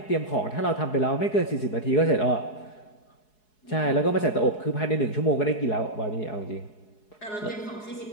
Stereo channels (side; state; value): right; late; 4.7 ms